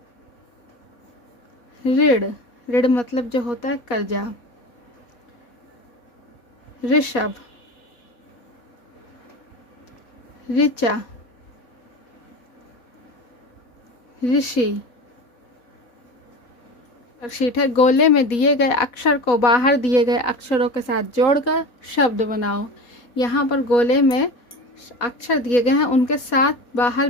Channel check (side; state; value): right; late; 4.1 ms